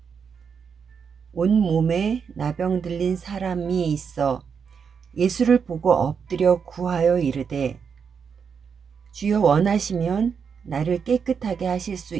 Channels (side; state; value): left; quieter; 6.5 dB